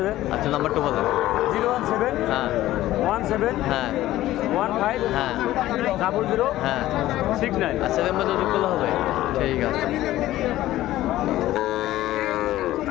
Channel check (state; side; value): quieter; right; 15.1 dB